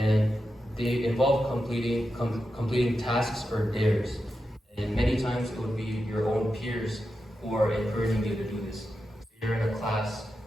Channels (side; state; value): both; normal; correlation 0.89